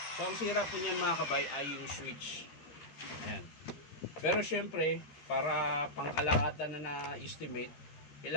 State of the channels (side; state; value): right; late; 13 ms